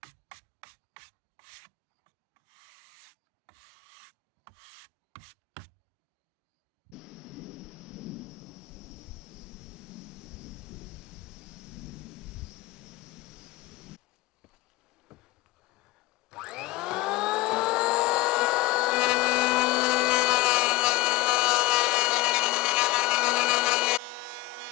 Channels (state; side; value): quieter; right; 18.7 dB